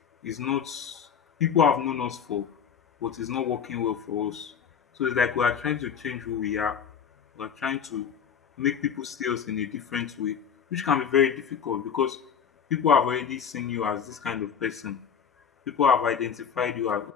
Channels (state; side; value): quieter; right; 7.4 dB